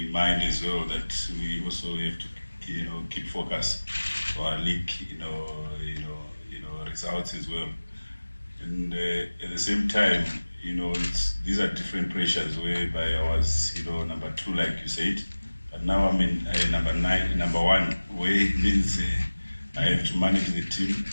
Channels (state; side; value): inverted; both; correlation -1.00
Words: in mind as well that we also have to keep focus for our league results as well, and at the same time these are different pressures whereby I was number 2 like you said, but now I'm in number 1, where it means I have to manage the team,